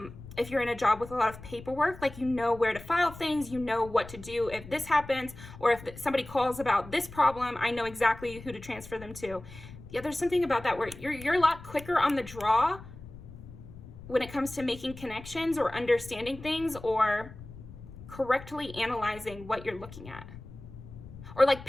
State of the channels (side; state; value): left; noise; rumble, 16 dB below the sound